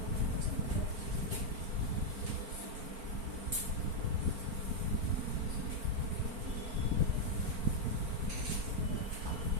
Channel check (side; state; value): left; late; 4.4 ms